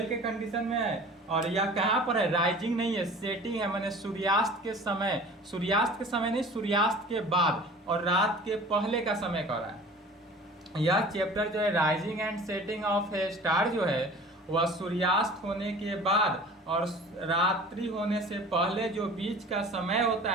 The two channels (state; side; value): normal; both; correlation 0.43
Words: के कंडीशन में है और यह कहाँ पर है, राइजिंग नहीं है, सेटिंग है, मैंने सूर्यास्त के समय, सूर्यास्त के समय नहीं, सूर्यास्त के बाद और रात के पहले का समय कर रहा है। यह चैप्टर जो है rising and setting of a star जो है वह सूर्यास्त होने के बाद और रात्रि होने से पहले जो बीच का समय होता